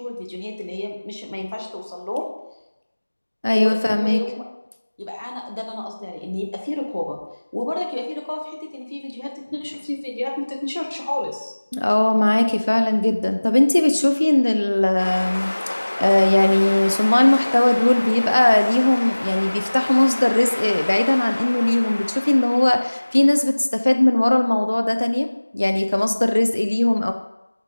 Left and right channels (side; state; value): both; inverted; correlation -1.00